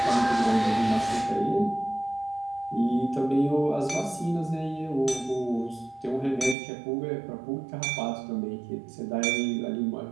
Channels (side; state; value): left; drops out; at 6.6 s